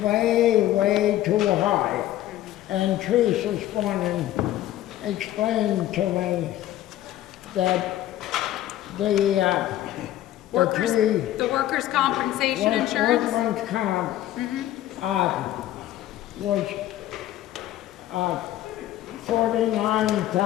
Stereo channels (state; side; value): quieter; right; 13.6 dB